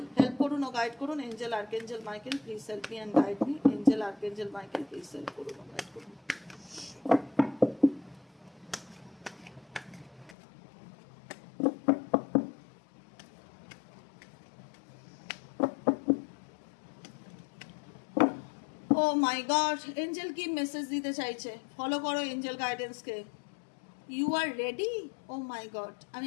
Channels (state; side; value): drops out; right; at 10.4 s